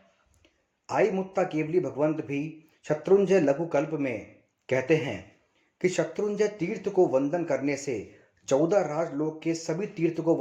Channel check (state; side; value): identical; both; correlation 1.00